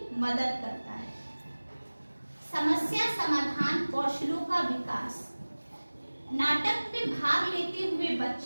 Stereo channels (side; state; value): both; inverted; correlation -1.00